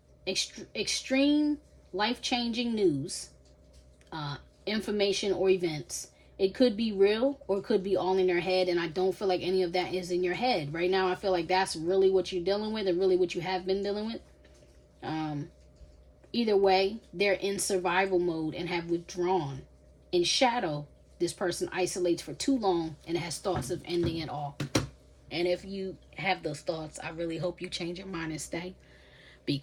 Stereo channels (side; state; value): both; identical; correlation 1.00